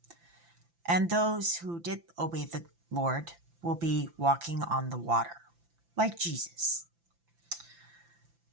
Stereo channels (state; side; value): late; left; 5.9 ms